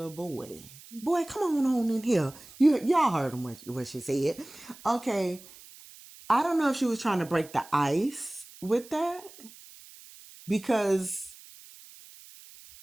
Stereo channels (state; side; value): noise; right; hiss, 20 dB below the sound